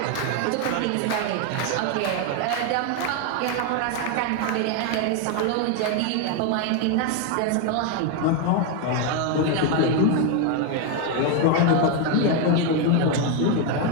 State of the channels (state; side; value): different; both; correlation 0.01